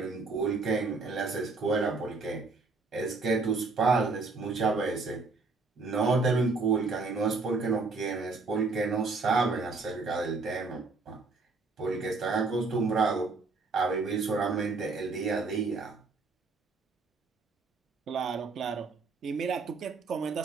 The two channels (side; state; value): left; quieter; 4.0 dB